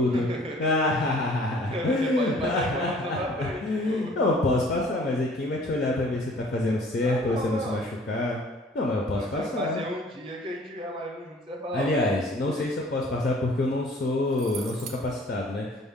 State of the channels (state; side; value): normal; both; correlation 0.53